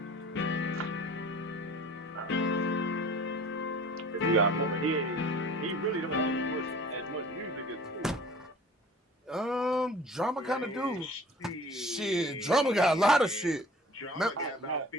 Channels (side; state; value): both; normal; correlation 0.46